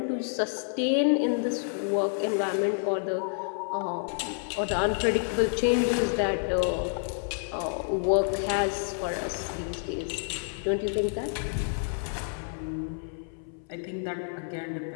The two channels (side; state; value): right; silent; 59 dB below the other